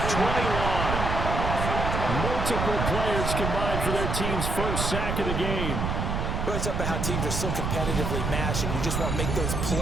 21. Multiple players combined for their team's first sack of the game. Well, it's about how teams are so competitively matched, and you just want to make those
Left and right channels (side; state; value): right; noise; rumble, 1 dB below the sound